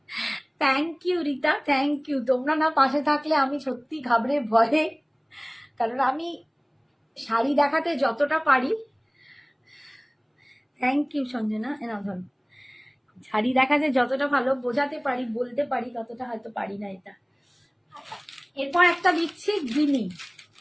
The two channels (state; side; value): identical; both; correlation 1.00